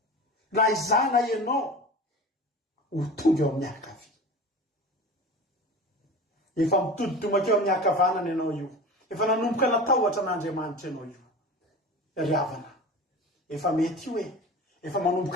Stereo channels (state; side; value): normal; both; correlation 0.34